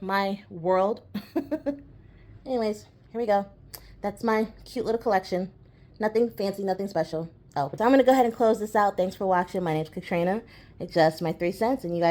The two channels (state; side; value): identical; both; correlation 1.00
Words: my world. Anyways, here we go. That's my cute little collection. Nothing fancy, nothing special. Oh, but I'm going to go ahead and close this out. Thanks for watching. My name's Katrina. It's just my 3 cents, and you